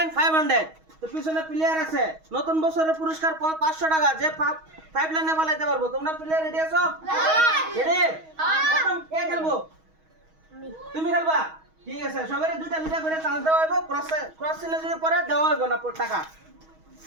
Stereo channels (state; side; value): late; left; 6.3 ms